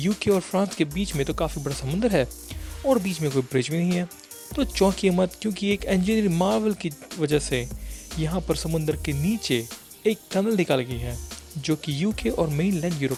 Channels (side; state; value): both; identical; correlation 1.00